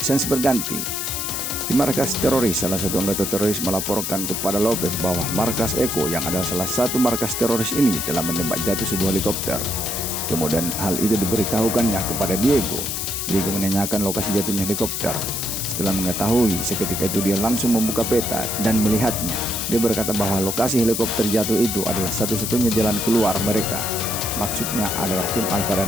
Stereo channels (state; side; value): noise; left; hiss, 3 dB below the sound